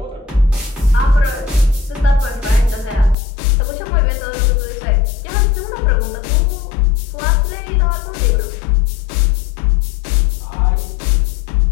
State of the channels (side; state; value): right; drops out; at 3.2 s